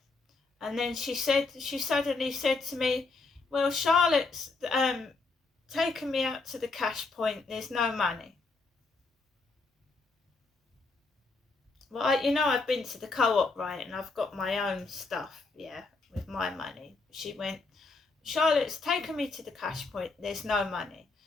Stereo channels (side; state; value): right; quieter; 3.9 dB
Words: and then she suddenly said to me, "Well, Charlotte's taken me out to the cash point, there's no money." Well, I've been to the co-op, right, and I've got my own stuff, yeah, with my money. She went, "Charlotte's taken me to the cash point, there's no money."